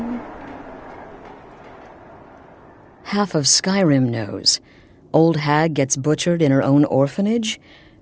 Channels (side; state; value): both; identical; correlation 1.00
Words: Half of Skyrim knows. Old hag gets butchered in her own orphanage.